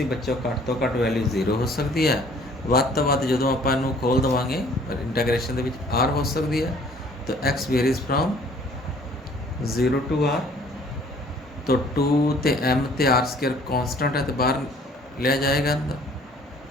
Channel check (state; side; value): normal; both; correlation 0.56